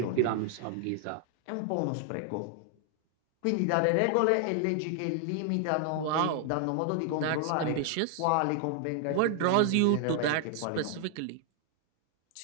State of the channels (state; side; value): different; both; correlation 0.00